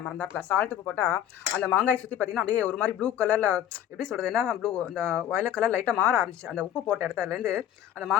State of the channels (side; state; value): right; quieter; 10.8 dB